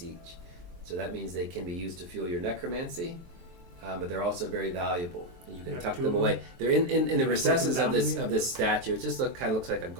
each, so that means they can be used to fuel your necromancy. But they're also very valuable, and you can Have tuck 2 them of away. They're in the Put them recesses down of to this me? of this statue. It just kind of looks like a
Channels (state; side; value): late; left; 23 ms